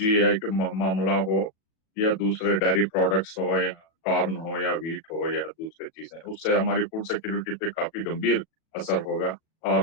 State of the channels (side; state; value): right; late; 37 ms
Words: का मामला हो, या दूसरे डेयरी प्रोडक्ट्स हो, या कॉर्न हो, या वीट हो, या दूसरी चीजें। उससे हमारी फूड सिक्योरिटी पे काफी गंभीर असर होगा, और